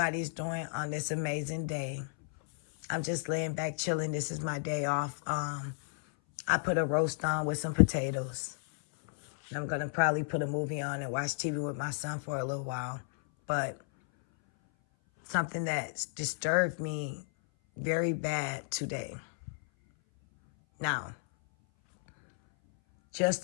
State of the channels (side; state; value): right; silent; 56 dB below the other